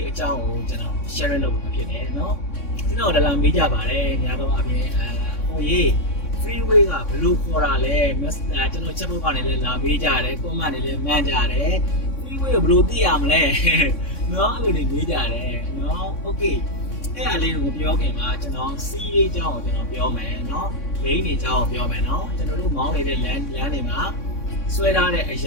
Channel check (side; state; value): right; late; 3.6 ms